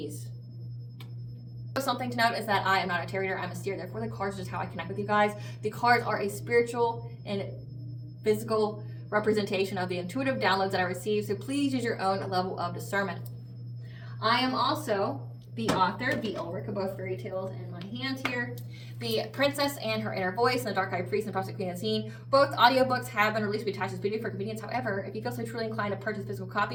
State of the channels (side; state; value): both; identical; correlation 1.00